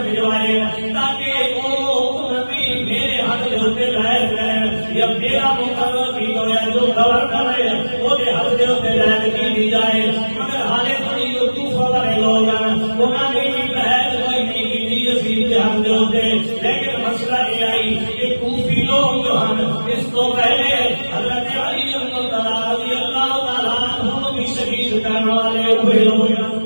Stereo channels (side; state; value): both; inverted; correlation -1.00